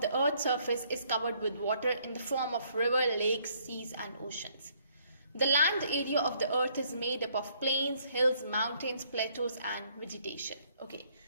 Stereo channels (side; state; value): both; inverted; correlation -0.66